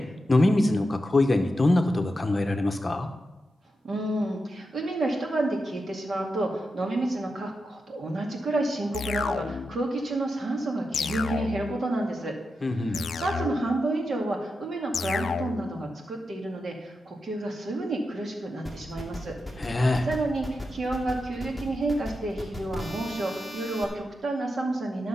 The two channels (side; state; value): both; normal; correlation 0.88